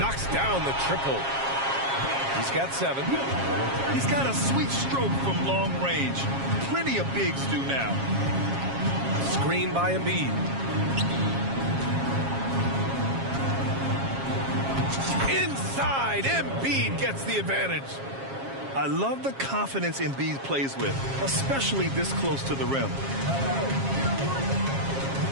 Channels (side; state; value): left; late; 7.4 ms